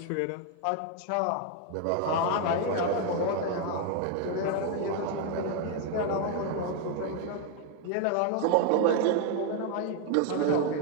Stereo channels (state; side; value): different; both; correlation 0.01